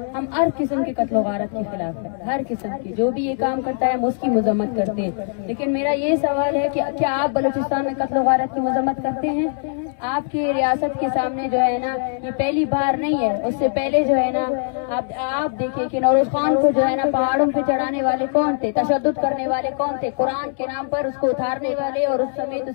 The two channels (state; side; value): silent; right; 65 dB below the other